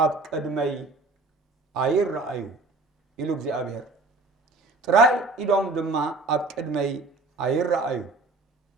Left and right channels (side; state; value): left; quieter; 3.3 dB